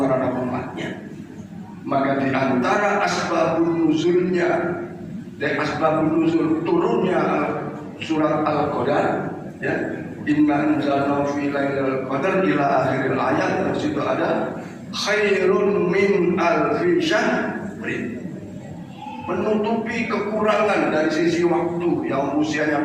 terhadap umatnya. Maka di antara asbabun nuzulnya, dan asbabun nuzul turunnya surat Al-Qadar, ya, inna anzalnahu fi lailatul qadar ila akhiril ayat. Di situ ada khairun min alfi syahrin, menutupi kekurangan dari sisi waktu yang usianya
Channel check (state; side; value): identical; both; correlation 1.00